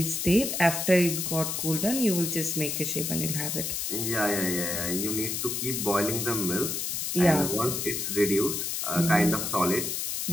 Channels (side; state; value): left; noise; hiss, 2 dB below the sound